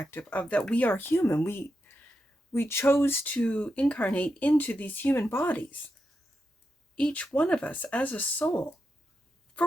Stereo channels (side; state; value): both; normal; correlation 0.87